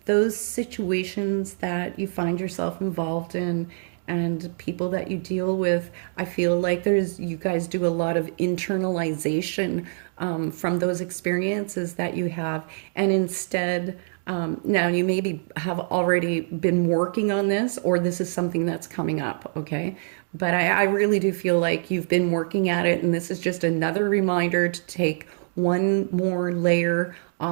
those situations that you find yourself involved in and people that you deal with, I feel like you guys do a lot of internalization from those experiences that you have. And instead, now you maybe have already been working on this, or this is something that's coming up, okay? But I really do feel like you've been working at it, and this is just another reminder to take one more layer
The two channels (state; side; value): silent; left; digital silence